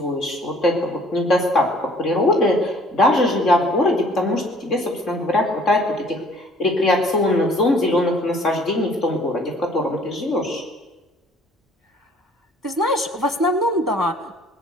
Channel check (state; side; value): normal; both; correlation 0.56